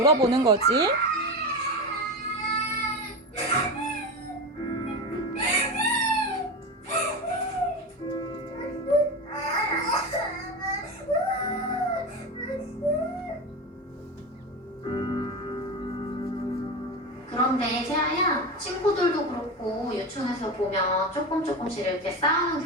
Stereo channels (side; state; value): both; normal; correlation 0.21